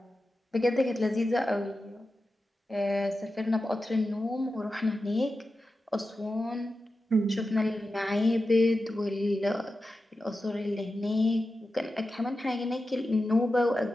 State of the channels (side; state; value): both; normal; correlation 0.92